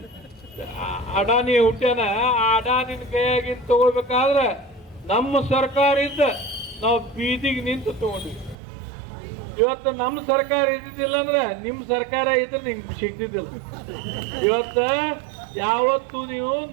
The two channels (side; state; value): left; drops out; at 8.6 s